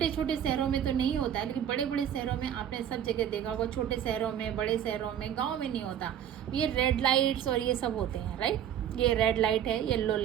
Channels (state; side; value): quieter; left; 9.9 dB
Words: छोटे शहरों में तो नहीं होता है, लेकिन बड़े बड़े शहरों में आपने सब जगह देखा होगा, छोटे शहरों में, बड़े शहरों में, गाँव में नहीं होता, ये रेड लाइट्स और ये सब होते हैं, राइट। ये रेड लाइट है, येलो